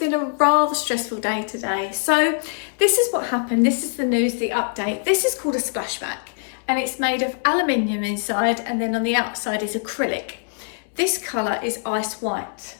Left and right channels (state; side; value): silent; right; digital silence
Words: a rather stressful day today. So this is what happened. This is the news, the update. This is called a splashback and it's made of aluminium inside and then on the outside is acrylic. This colour is ice white.